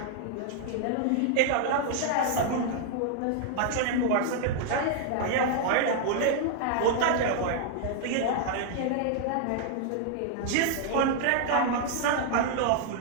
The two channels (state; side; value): different; both; correlation 0.00